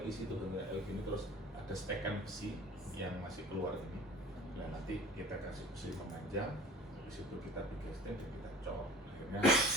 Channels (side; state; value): both; normal; correlation 0.44